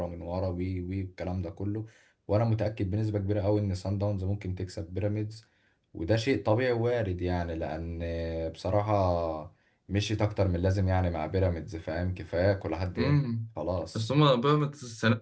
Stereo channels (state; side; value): identical; both; correlation 1.00